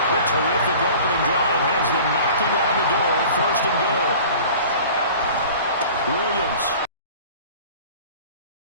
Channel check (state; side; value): inverted; both; correlation -0.43